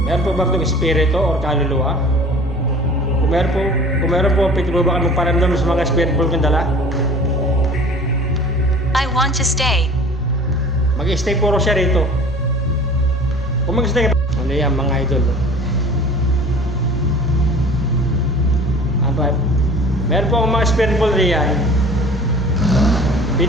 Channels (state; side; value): normal; both; correlation 0.44